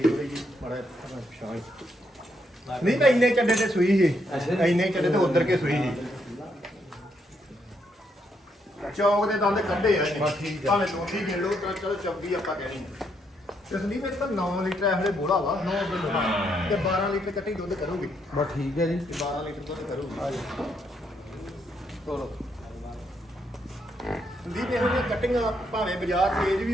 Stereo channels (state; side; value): normal; both; correlation 0.76